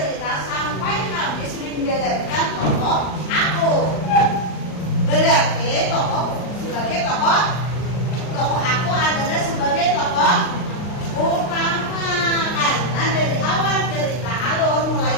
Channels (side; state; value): right; late; 39 ms